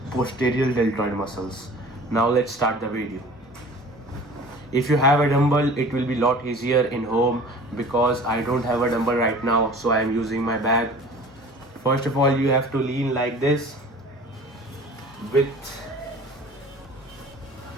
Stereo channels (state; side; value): normal; both; correlation 0.44